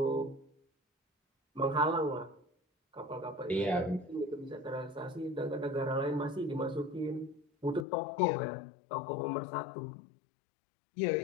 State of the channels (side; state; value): right; drops out; at 7.9 s